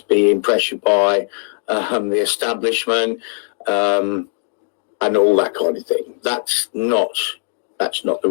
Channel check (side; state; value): right; silent; digital silence